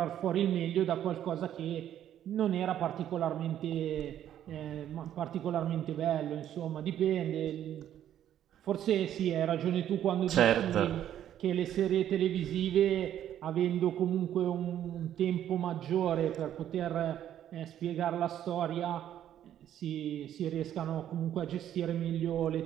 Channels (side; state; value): left; quieter; 10.9 dB